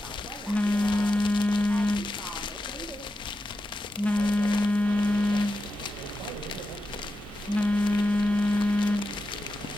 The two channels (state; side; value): normal; both; correlation 0.89